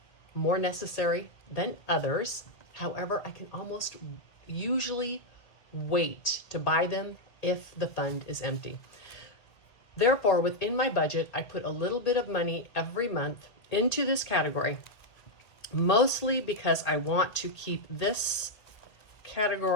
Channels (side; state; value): right; late; 1.9 ms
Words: more necessary than others. However, I can almost usually wait to buy them if the fund is empty. Therefore, within my budget, I put a little bit of money every month into this category, mostly because I want to keep this